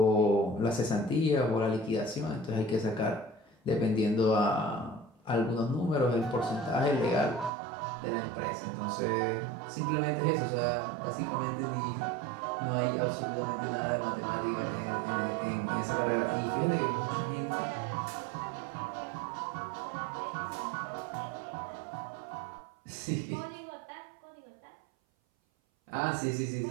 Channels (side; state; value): left; drops out; at 7.5 s